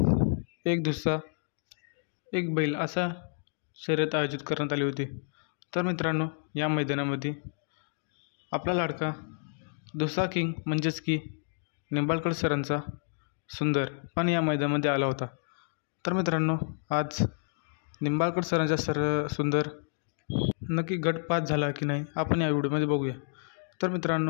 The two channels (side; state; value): right; silent; digital silence